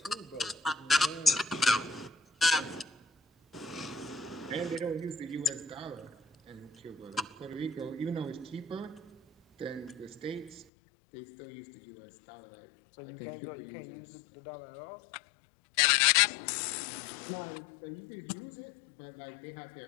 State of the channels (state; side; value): drops out; right; at 10.7 s